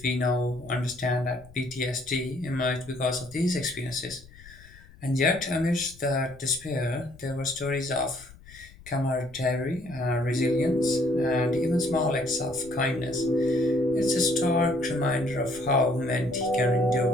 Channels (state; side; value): noise; left; rumble, 21 dB below the sound